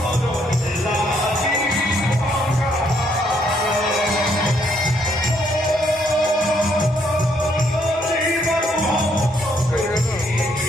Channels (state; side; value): normal; both; correlation 0.71